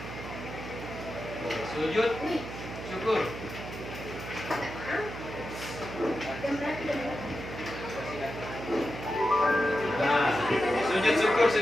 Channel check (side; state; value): right; noise; hum, 10 dB below the sound